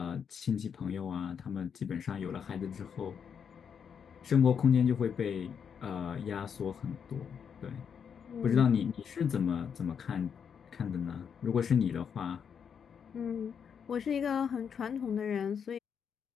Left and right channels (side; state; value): right; quieter; 7.2 dB